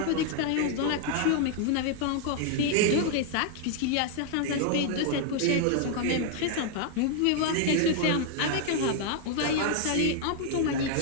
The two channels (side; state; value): both; different; correlation 0.00